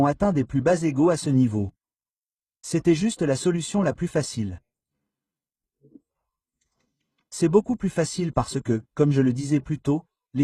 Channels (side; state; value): both; identical; correlation 1.00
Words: atteint des plus bas égaux à ce niveau. C'était juste la solution la plus facile. C'est beaucoup plus facile parce que, comme je le disais plus tôt, les